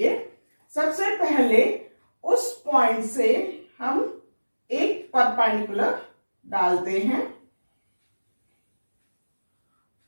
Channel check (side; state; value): both; inverted; correlation -1.00